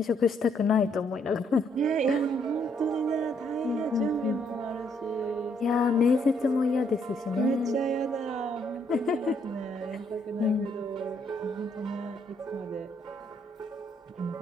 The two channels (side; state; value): both; normal; correlation 0.71